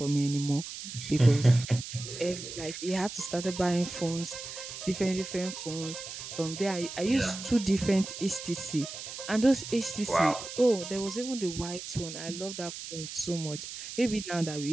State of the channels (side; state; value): right; noise; hiss, 9 dB below the sound